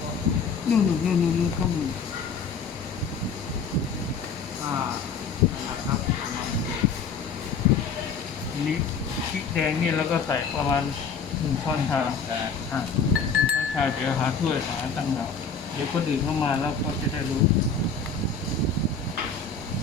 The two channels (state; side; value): quieter; right; 5.4 dB